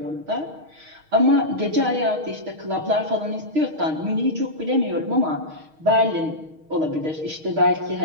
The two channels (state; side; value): late; left; 6.4 ms